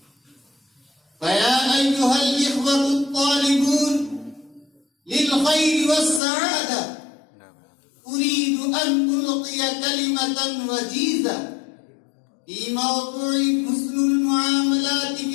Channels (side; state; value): right; drops out; at 6.2 s